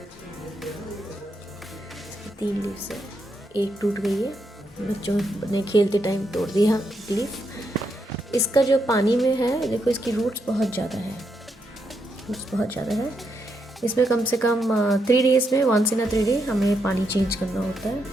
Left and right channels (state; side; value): normal; both; correlation 0.80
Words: 3 लीव्स है, एक टूट गई है, बच्चों ने खेलते टाइम तोड़ दिया एक लीफ। इसका जो पानी में है देखो, इसकी रूट्स बहुत ज़्यादा है। इसमें कम से कम 3 डेज़ में वंस इन अ 3 डे हमें पानी चेंज करना होता